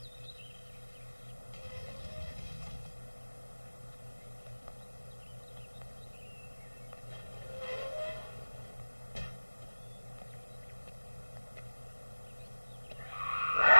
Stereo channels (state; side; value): inverted; both; correlation -1.00